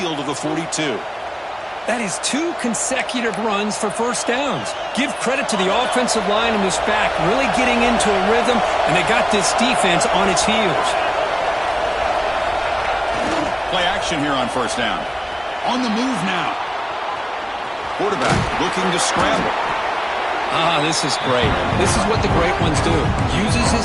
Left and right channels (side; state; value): both; identical; correlation 1.00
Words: of the 42. That is 2 consecutive runs for first downs. Give credit to the offensive line and this back really getting into a rhythm, and they got this defense on its heels. Play action here on first down. On the move now. Quarterback looking to scramble. This is great. This is what the great ones do. Uses